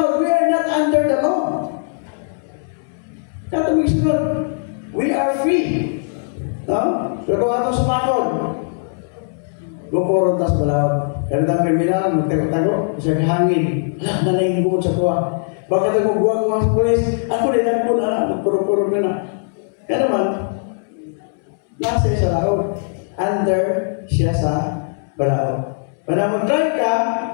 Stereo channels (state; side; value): silent; right; 66 dB below the other